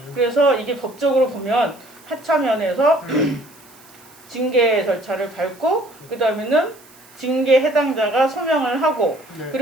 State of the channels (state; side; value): noise; right; hiss, 25 dB below the sound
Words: 그래서 이게 법적으로 보면 하차면에서 징계 절차를 밟고 그 다음에는 징계 해당자가 소명을 하고 네.